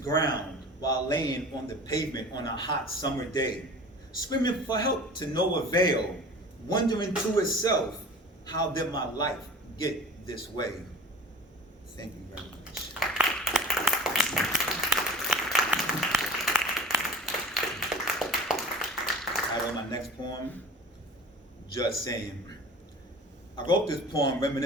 while laying on the pavement on a hot summer day, screaming for help to no avail, wondering to itself, how did my life get this way? Thank you very much. All right, on my next poem, Just Saying. I wrote this poem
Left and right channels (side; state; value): both; normal; correlation 0.41